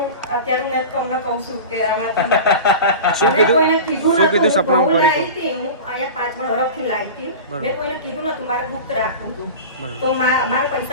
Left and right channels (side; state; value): both; inverted; correlation -0.32